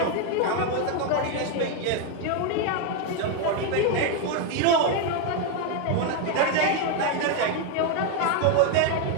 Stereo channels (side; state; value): both; different; correlation 0.01